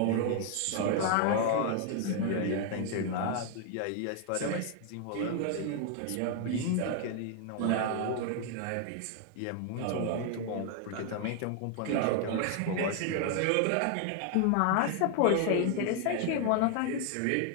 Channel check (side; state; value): both; different; correlation 0.00